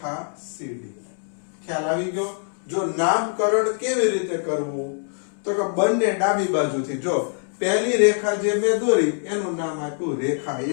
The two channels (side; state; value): right; silent; 63 dB below the other